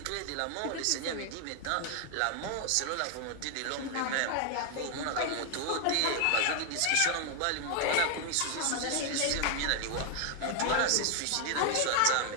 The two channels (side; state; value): both; different; correlation 0.00